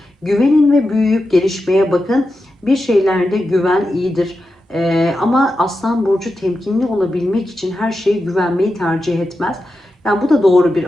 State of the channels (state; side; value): normal; both; correlation 0.90